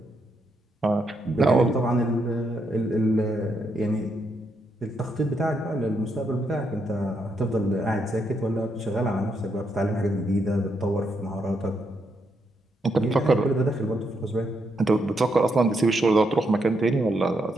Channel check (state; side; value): normal; both; correlation 0.79